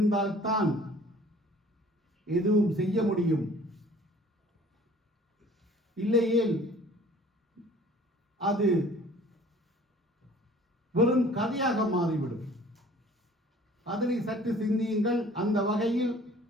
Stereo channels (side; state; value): both; normal; correlation 0.51